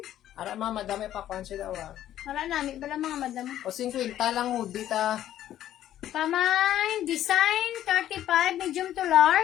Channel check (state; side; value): quieter; right; 12.1 dB